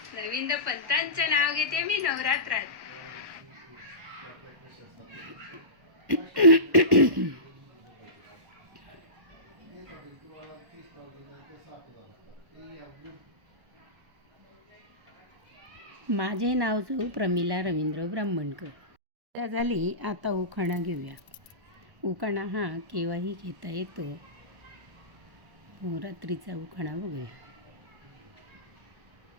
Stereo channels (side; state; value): left; late; 1.1 ms